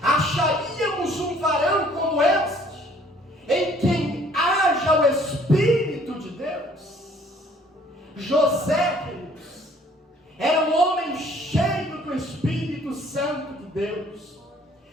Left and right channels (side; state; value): both; normal; correlation 0.58